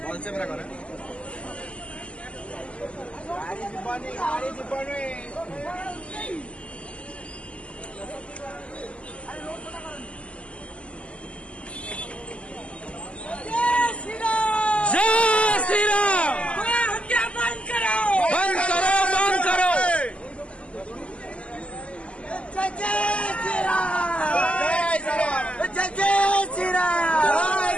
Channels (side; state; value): right; late; 0.057 ms